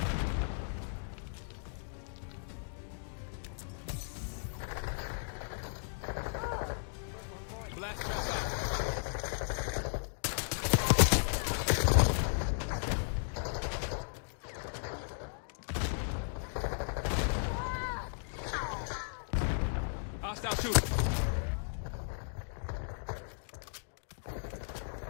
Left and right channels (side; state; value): right; silent; digital silence